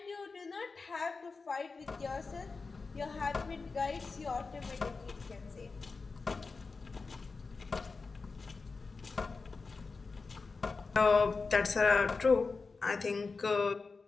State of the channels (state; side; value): quieter; right; 4.3 dB